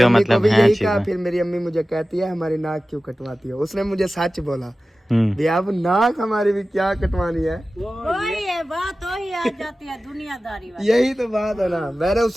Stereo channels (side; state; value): both; normal; correlation 0.96